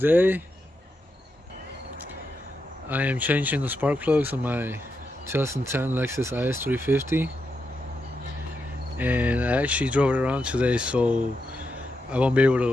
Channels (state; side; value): normal; both; correlation 0.85